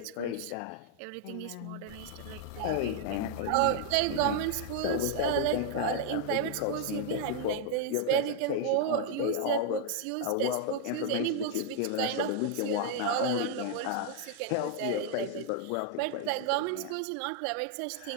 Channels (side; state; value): both; different; correlation 0.00